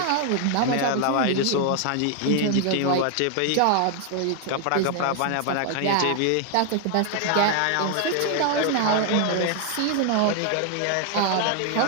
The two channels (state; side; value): different; both; correlation 0.00